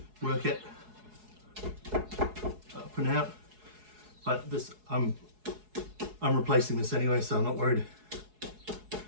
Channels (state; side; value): late; left; 4.7 ms